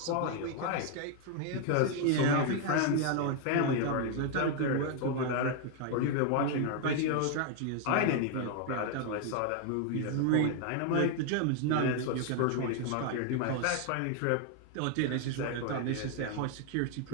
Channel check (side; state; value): both; different; correlation 0.00